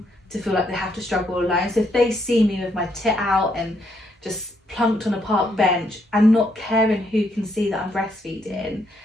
to feel like they have to struggle alone. So if they see me with my tit out and just plunked on a park bench and not caring who can see that I'm breastfeeding,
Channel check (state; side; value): normal; both; correlation 0.74